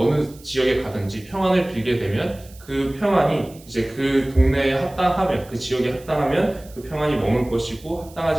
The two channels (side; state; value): right; noise; hiss, 23 dB below the sound